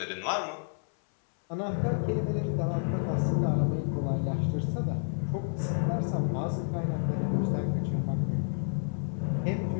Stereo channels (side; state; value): right; silent; 58 dB below the other